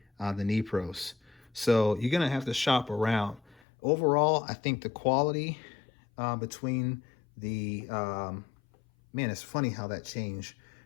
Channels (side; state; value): right; drops out; at 3.6 s